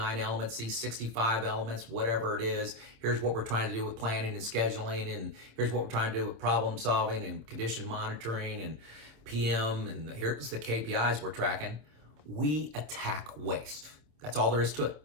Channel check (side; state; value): left; late; 27 ms